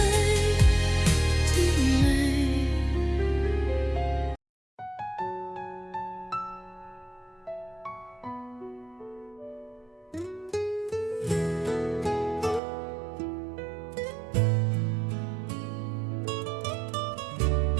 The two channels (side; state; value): left; drops out; at 12.6 s